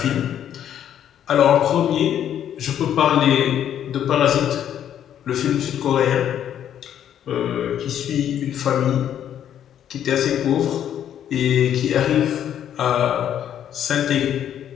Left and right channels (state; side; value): quieter; right; 10.1 dB